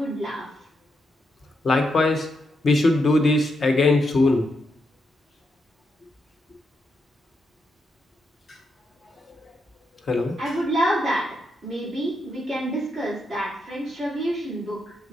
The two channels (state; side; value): normal; both; correlation 0.82